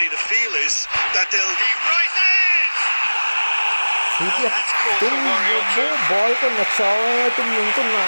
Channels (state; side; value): inverted; both; correlation -1.00